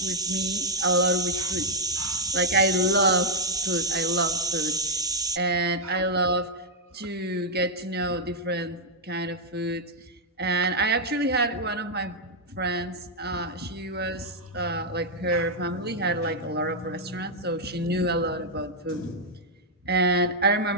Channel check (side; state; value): both; normal; correlation -0.03